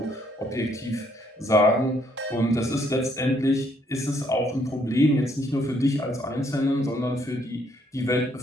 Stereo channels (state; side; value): normal; both; correlation 0.69